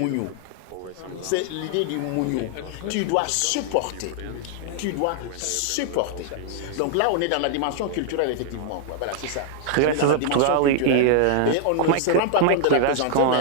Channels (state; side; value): different; both; correlation -0.01